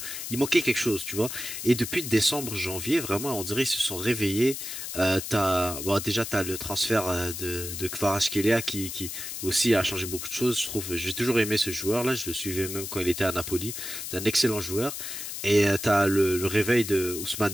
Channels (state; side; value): noise; left; hiss, 7 dB below the sound